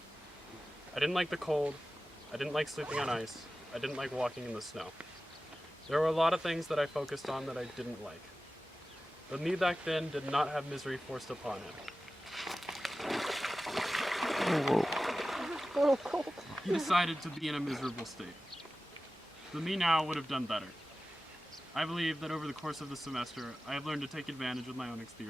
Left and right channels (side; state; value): both; normal; correlation 0.95